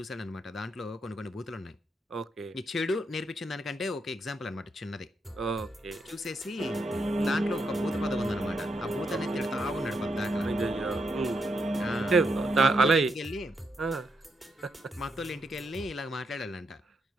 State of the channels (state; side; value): normal; both; correlation 0.80